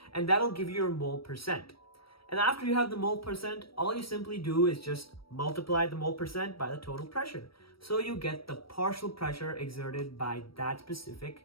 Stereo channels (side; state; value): right; late; 0.75 ms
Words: and that'll give you your mole percent. And after you have the mole percent, all you simply do is just multiply the mole percent by the total pressure. So you get the partial pressure exerted by that